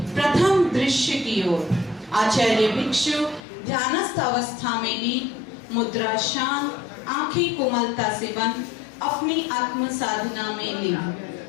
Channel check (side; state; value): right; drops out; at 3.4 s